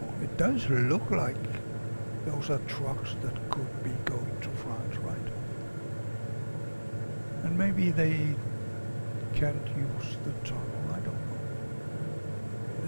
It does look like those are trucks that could be going to France, right? And maybe they can't use the tunnel, I don't know.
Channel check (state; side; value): inverted; both; correlation -1.00